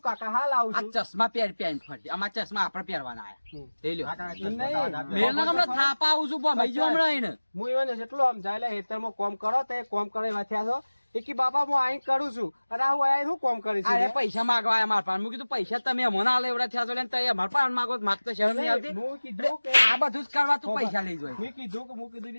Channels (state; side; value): inverted; both; correlation -1.00